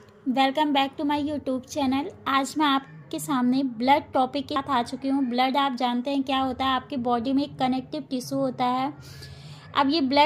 welcome back to my YouTube channel. आज मैं आपके सामने ब्लड टॉपिक के साथ आ चुकी हूँ। ब्लड आप जानते हैं क्या होता है, आपके बॉडी में एक कनेक्टिव टिश्यू होता है। अब ये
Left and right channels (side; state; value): both; identical; correlation 1.00